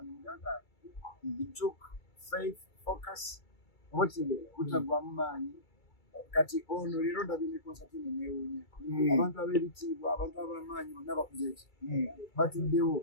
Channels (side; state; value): right; late; 2.3 ms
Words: muganda it took faith focus oba kitegeera butagwamu maanyi kati ono leero ndabye ne konsati eno neewuunya abantu ab'ebitiibwa abantu ab'amaanyi bonna bakuze eki batuddewo